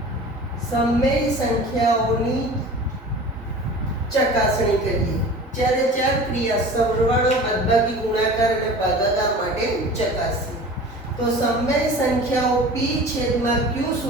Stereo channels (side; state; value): both; normal; correlation 0.39